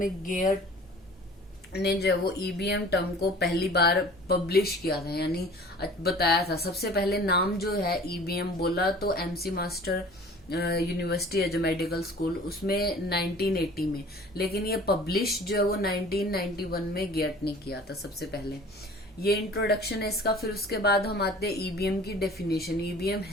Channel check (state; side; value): normal; both; correlation 0.46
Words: गेट ने जो वो ईबीएम टर्म को पहली बार पब्लिश किया था, यानी बताया था। सबसे पहले नाम जो है ईबीएम बोला तो एमसी मास्टर यूनिवर्सिटी है जो मेडिकल स्कूल, उसमें 1980 में, लेकिन ये पब्लिश जो है वो 1991 में गेट ने किया था सबसे पहले। ये इंट्रोडक्शन है इसका। फिर उसके बाद हम आते हैं ईबीएम की डेफिनेशन। ईबीएम